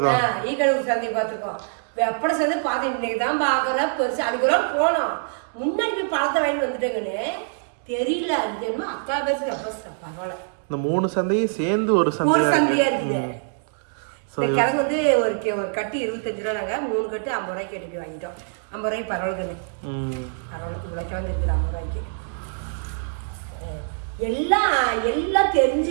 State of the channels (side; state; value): left; silent; digital silence